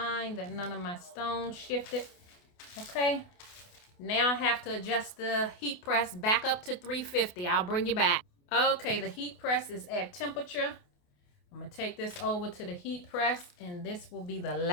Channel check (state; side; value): late; right; 28 ms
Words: that none of my stones shifted. Okay. Now I have to adjust the heat press back up to 350. I'll bring you back. Okay, the heat press is at temperature. I'm going to take this over to the heat press, and this will be the